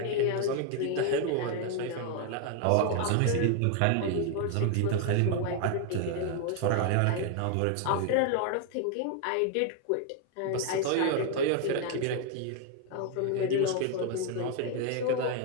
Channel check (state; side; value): different; both; correlation 0.01